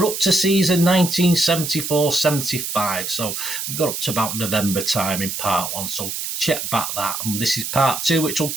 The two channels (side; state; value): right; noise; hiss, 4 dB below the sound